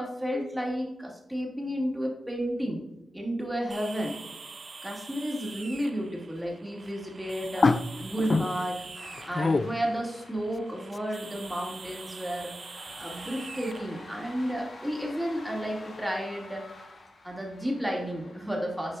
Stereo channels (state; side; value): normal; both; correlation 0.92